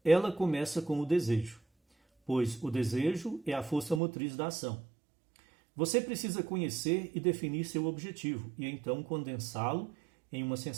ela começa com o desejo, pois o desejo é a força motriz da ação. Você precisa conhecer e definir seu objetivo e então condensá-lo em uma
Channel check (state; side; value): drops out; left; at 4.0 s